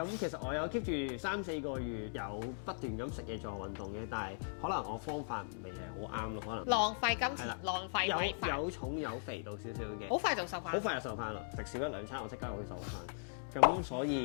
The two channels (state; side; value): silent; right; digital silence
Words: 其實我有 keep 住3-4個月有不斷咁食嘢做運動嘅，但係可能我方法未係好啱咯，可能浪費金錢，浪費有重有肥到少少嘅，好快就瘦翻，好快就瘦翻啦！食少1-2餐我即刻會瘦翻。咁所